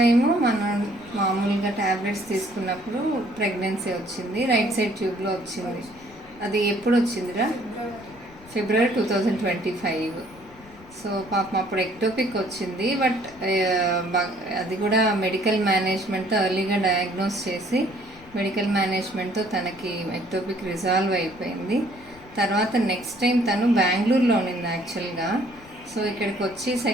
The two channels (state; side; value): noise; left; rumble, 23 dB below the sound